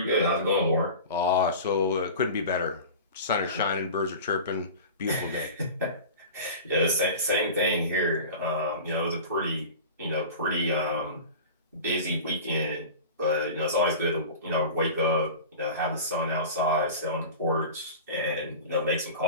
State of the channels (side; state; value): both; inverted; correlation -0.34